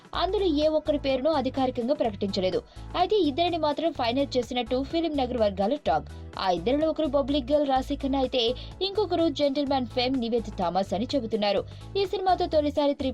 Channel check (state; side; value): identical; both; correlation 1.00